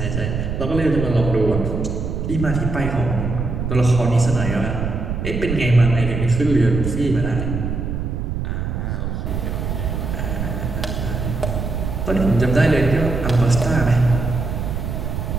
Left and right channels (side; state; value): right; noise; rumble, 3 dB below the sound